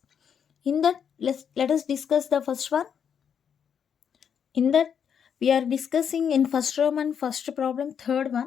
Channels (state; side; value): quieter; right; 7.7 dB